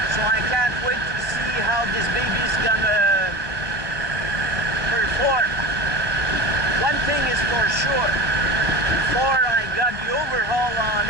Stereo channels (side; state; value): left; late; 1.2 ms